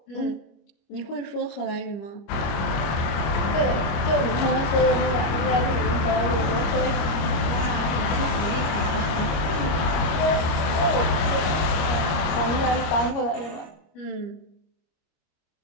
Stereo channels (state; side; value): late; right; 26 ms